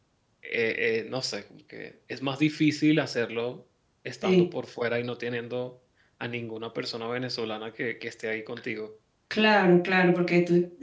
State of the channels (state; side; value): identical; both; correlation 1.00